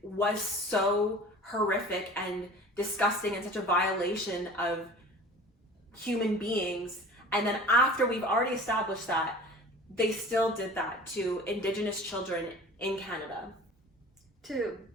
was so horrific and disgusting and such a violation of human beings, and then after we've already established that, they still did that to Indigenous children in Canada. To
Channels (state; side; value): normal; both; correlation 0.41